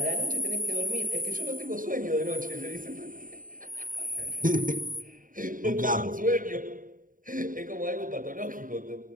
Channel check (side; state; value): left; late; 0.39 ms